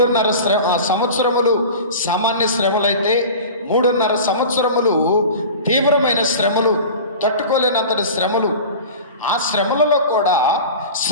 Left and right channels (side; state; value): both; inverted; correlation -0.36